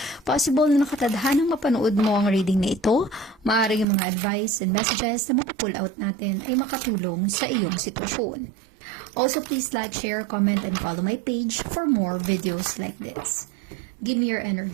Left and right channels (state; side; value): drops out; left; at 3.9 s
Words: possible na nakatadhanang mapanood mo ang reading na ito. Maaaring yung mga advice and messages na mapupull out natin ay makatulong sa iyong sitwasyon. Also, please like, share, comment, and follow my page for more videos like this. Give me your